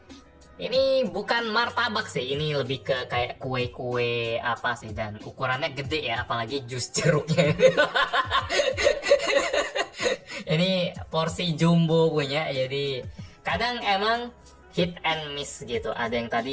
Ini bukan martabak sih, ini lebih ke kayak kue-kue apa sih, dan ukurannya gede ya, apalagi jus jeruknya. Ini porsi jumbo punya, jadi kadang emang hit and miss gitu. Ada yang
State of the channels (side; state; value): both; identical; correlation 1.00